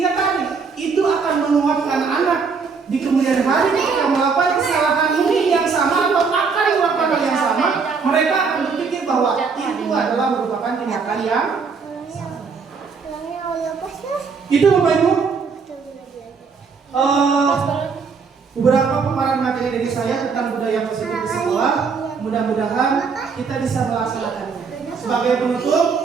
tadi itu akan menguatkan anak di kemudian hari ketika melakukan kesalahan ini yang sama atau akan melakukan hal yang sama, mereka akan berpikir bahwa itu adalah merupakan tindakan yang itu Bapak Ibu. Beberapa paparan materi dari saya tentang budaya positif di sekolah. Mudah-mudahan kita bisa melaksanakannya. Sebagai penutup,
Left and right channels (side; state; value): left; quieter; 5.3 dB